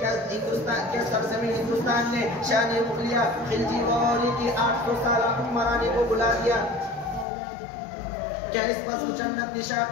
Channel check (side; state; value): right; drops out; at 7.2 s